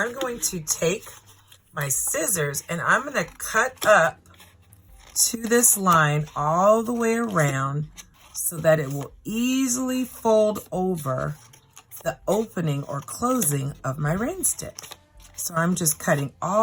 going to take my scissors and I'm going to cut up to this line all the way around so that it will easily fold over the opening or closing of my rain stick. So I'm just cutting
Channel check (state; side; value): identical; both; correlation 1.00